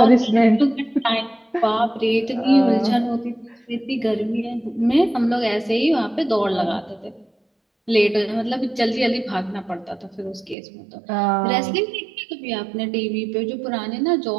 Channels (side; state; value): left; drops out; at 10.6 s